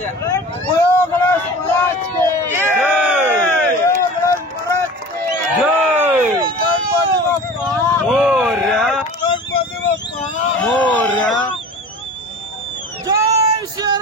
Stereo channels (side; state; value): both; normal; correlation 0.38